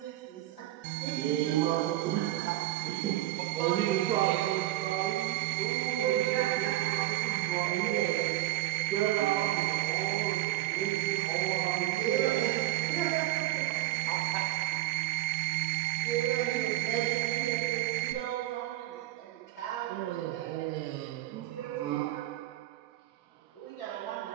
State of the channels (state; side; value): quieter; left; 15.8 dB